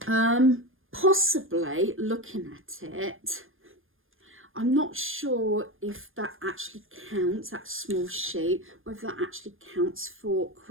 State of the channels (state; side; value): late; left; 0.59 ms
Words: possibly looking at it, I'm not sure if that actually counts, that small sheet, whether that actually counts for